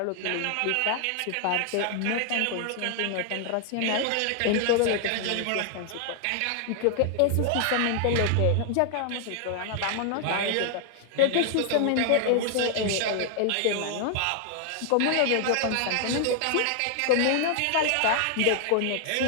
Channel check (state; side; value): different; both; correlation 0.00